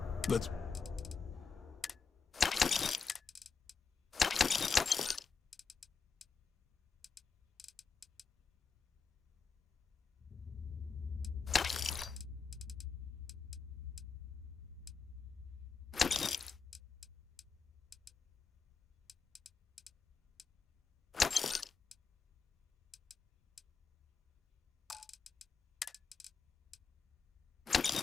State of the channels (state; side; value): quieter; right; 5.1 dB